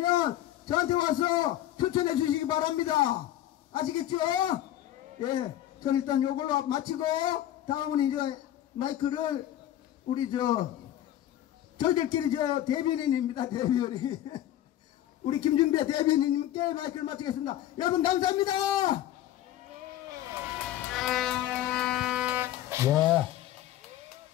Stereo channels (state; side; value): quieter; right; 12.8 dB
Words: 저한테 와서 추천해 주시기 바랍니다. 아시겠죠? 예, 저는 일단 요걸로 마치고 다음은 이제 마이크를 우리 저희들끼리 저 대변인입니다. 대변인. 우리 김준배 대변인님께 마이크를 마치겠습니다. 여러분 감사합니다. 예.